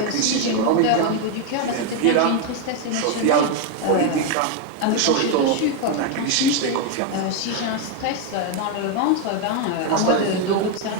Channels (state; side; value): different; both; correlation 0.02